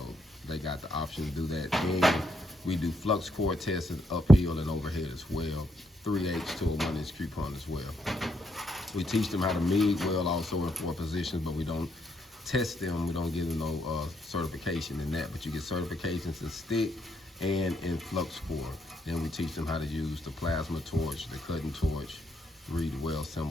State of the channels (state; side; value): normal; both; correlation 0.76